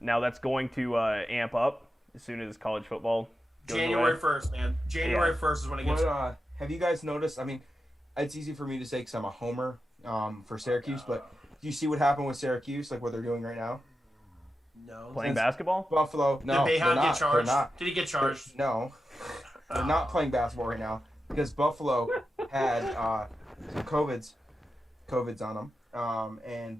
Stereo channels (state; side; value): normal; both; correlation 0.90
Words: Now that's going to amp up as soon as college football goes January away. 1st, man. January 1st is when it gets... Have you guys noticed? I mean, it's easy for me to say because I'm a homer for Syracuse, but do you see what happened with Syracuse, what they're doing right now? No. Playing basketball? Buffalo. No, Did they're Bayhound not. get charged? They're not. Did he get charged? No, they're not playing basketball right now because Buffalo had some COVIDs on them, and